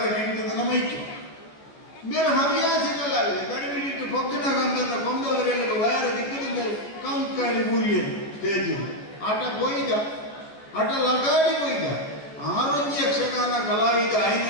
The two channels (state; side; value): late; right; 14 ms